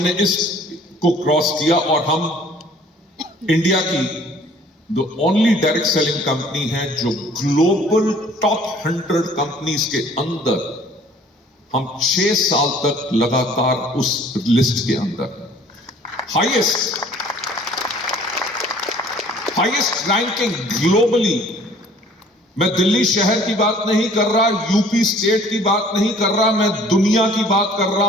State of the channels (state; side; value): normal; both; correlation 0.54